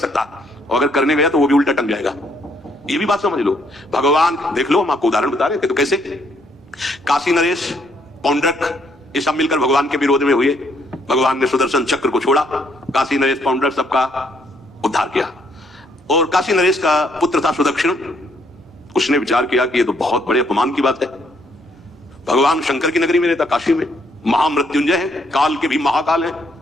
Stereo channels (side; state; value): both; normal; correlation 0.70